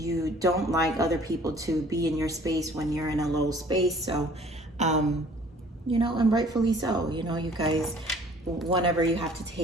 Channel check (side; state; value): both; normal; correlation 0.53